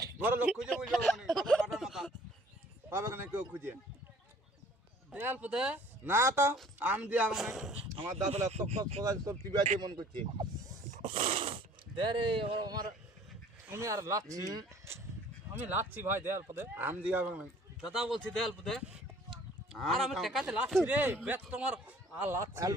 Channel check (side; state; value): both; normal; correlation 0.54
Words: ঘরের লোক খুঁজে বলবে কোনি কাটার মাথা পাবে না কেউ খুঁজে। দেয়াল পদে না তো আম দিয়ে মানে আমার দাঁতলা তক তক কোথায় তোর টিভি আছে মন করছে। দে রে আমার, আমি আর লাচ্ছি, আমি লাচ্ছি ভাই দেয়াল পদে। আম দিয়ে হবে না দাদা বলছি দেয়াল পদে। আর আমি টেকাতে লাচ্ছি রে, বেত তোমার আর লাচ্ছি। আল